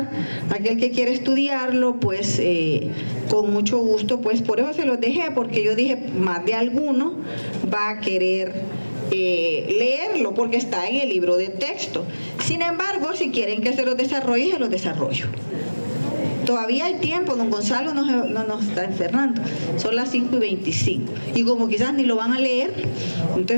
aquel que quiera estudiarlo, pues con mucho gusto, pues por eso se los dejé, porque yo dije, más de alguno va a querer leerlo, porque está en el libro de texto. Sin embargo, si quieren que se los desarrolle, se los desarrollo. Todavía hay tiempo, don Gonzalo no nos está encerrando, son las 5:25, y como quizás ni lo van a leer,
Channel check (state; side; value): inverted; both; correlation -1.00